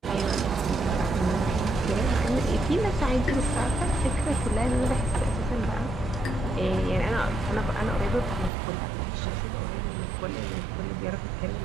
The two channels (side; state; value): left; drops out; at 8.5 s